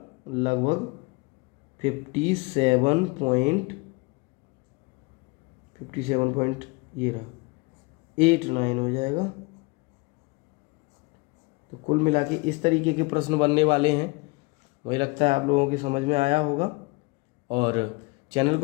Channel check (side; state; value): right; quieter; 27.2 dB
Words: लगभग 57 ये रहा 89 हो जाएगा। तो कुल मिला के इस तरीके के प्रश्न बनने वाले हैं। मुझे लगता है आप लोगों की समझ में आया होगा, और चैनल